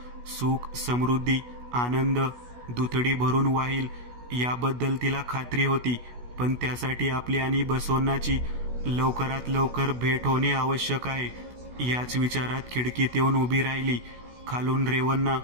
सुख, समृद्धी, आनंद दुथडी भरून वाहील याबद्दल तिला खात्री होती. पण त्यासाठी आपली आणि बसवण्णाची लवकरात लवकर भेट होणे आवश्यक आहे. याच विचारात खिडकीत येऊन उभी राहिली. खालून रेवन्ना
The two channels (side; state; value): left; late; 16 ms